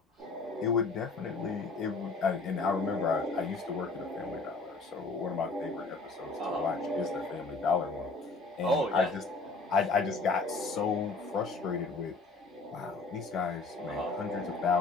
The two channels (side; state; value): right; quieter; 3.8 dB